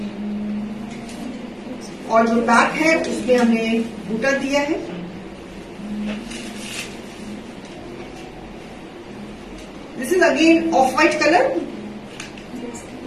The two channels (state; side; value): identical; both; correlation 1.00